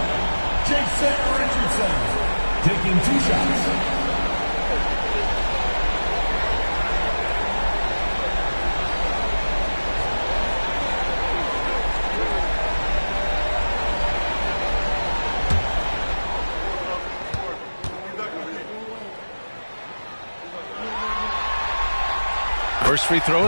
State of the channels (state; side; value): inverted; both; correlation -1.00